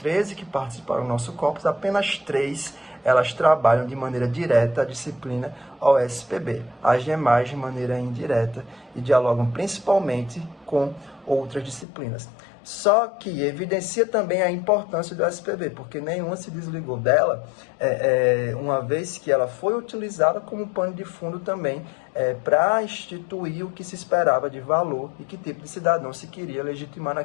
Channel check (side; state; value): right; drops out; at 11.9 s